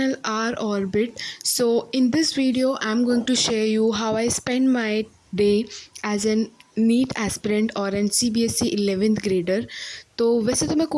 R Orbit. So in this video I'm going to share you how I spend my day as an NEET aspirant और an C B S E 11th grader. तो वैसे तो मैं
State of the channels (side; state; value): both; identical; correlation 1.00